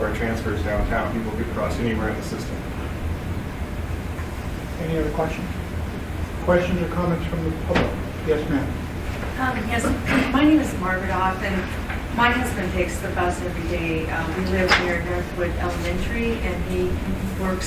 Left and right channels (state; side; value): identical; both; correlation 1.00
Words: our transfers downtown. People could cross anywhere in the system. Any other questions? Questions or comments from the public? Yes, ma'am. Yes, my name is Margaret Off, and my husband takes the bus every day. We live near Northwood Elementary, and he